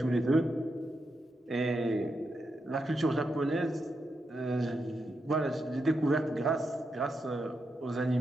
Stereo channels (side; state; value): both; normal; correlation 0.85